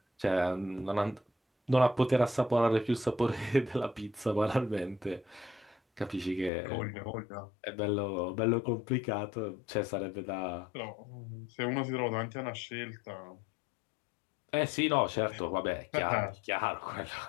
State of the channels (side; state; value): right; drops out; at 6.5 s